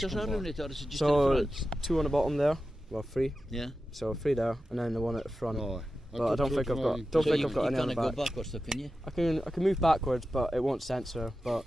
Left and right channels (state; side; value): normal; both; correlation 0.93